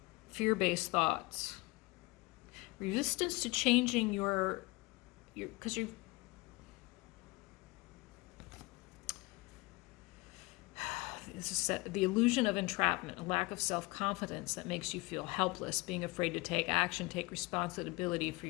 fear-based thoughts. Resistance to changing your because you the illusion of entrapment, a lack of self-confidence that makes you feel helpless, being afraid to take action, take responsibility for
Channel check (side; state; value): right; quieter; 23.8 dB